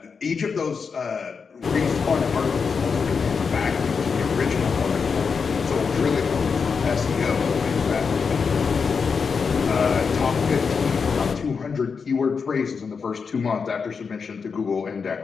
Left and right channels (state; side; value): quieter; right; 5.6 dB